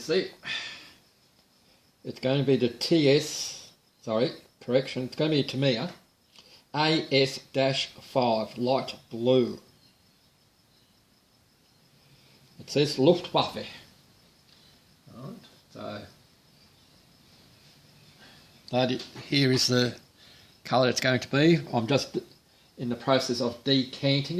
there. It's going to be the it's going to be a Mania AS-5 light blue. It says Luftwaffe. Right, so here is the colour it's going to be. I'm just in the process of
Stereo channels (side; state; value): both; identical; correlation 1.00